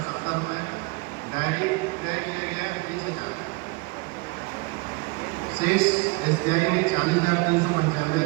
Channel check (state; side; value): quieter; left; 26.8 dB